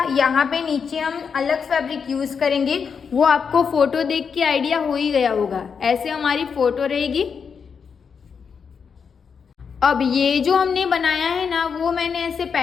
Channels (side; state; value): right; quieter; 6.2 dB